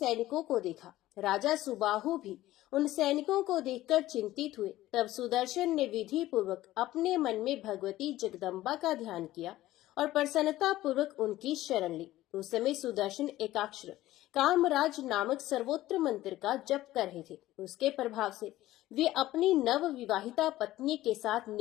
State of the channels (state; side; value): quieter; right; 15.6 dB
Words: को देखा। राजा सुबाहु भी उन सैनिकों को देखकर चिंतित हुए। तब सुदर्शन ने विधि पूर्वक अपने मन में भगवती जगदम्बा का ध्यान किया और प्रसन्नता पूर्वक उनकी शरण ली। उस समय सुदर्शन एकाक्षर कामराज नामक सर्वोत्तम मंत्र का जप कर रहे थे। उसके प्रभाव से वे अपनी नव विवाहिता पत्नी के साथ